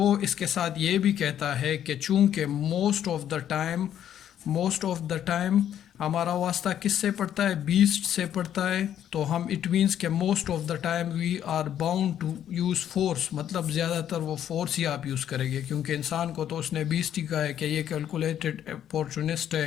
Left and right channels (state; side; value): quieter; right; 10.3 dB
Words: اس کے ساتھ یہ بھی کہتا ہے کہ چونکہ موسٹ آف دا ٹائم ہمارا واسطہ کس سے پڑتا ہے؟ بیسٹ سے پڑتا ہے. تو ہم اٹ مینس کہ most of the time we are bound to use force, مطلب زیادہ تر وہ فورس ہی آپ یوز کریں گے، کیونکہ انسان کو تو اس نے بیسٹ ہی کہا ہے کہ یہ کیلکولیٹڈ اپورچونسٹ